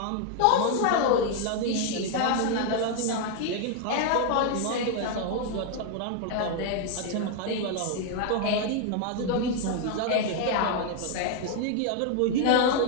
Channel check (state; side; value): different; both; correlation 0.00